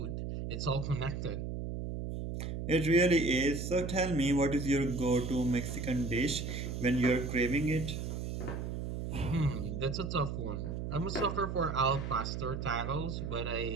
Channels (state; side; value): noise; right; hum, 4 dB below the sound